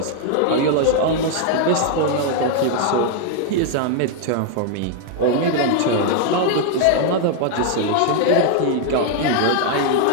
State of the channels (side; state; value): both; different; correlation 0.00